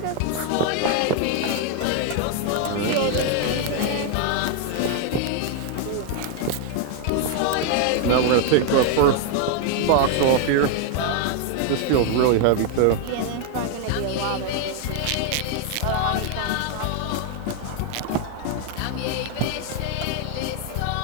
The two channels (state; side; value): different; both; correlation 0.00